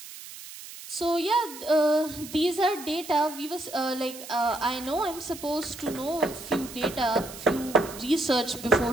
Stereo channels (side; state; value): right; noise; hiss, 14 dB below the sound